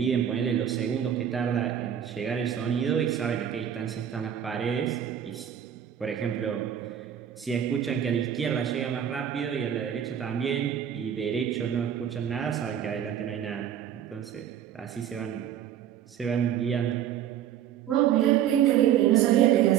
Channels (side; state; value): left; quieter; 9.7 dB